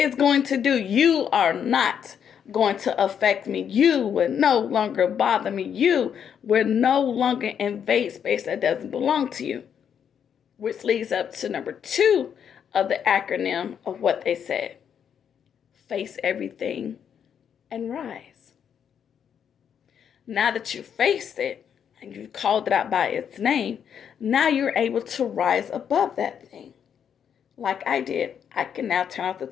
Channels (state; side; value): quieter; right; 8.1 dB